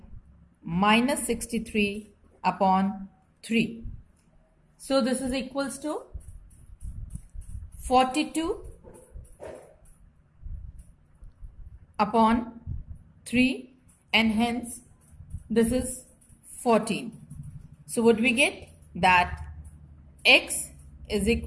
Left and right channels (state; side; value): identical; both; correlation 1.00